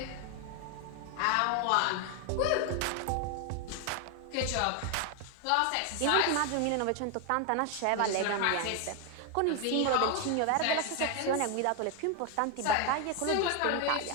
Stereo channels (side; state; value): both; different; correlation 0.01